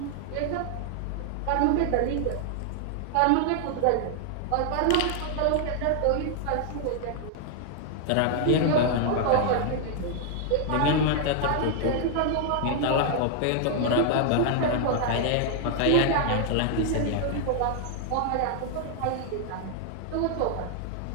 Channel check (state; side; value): different; both; correlation 0.00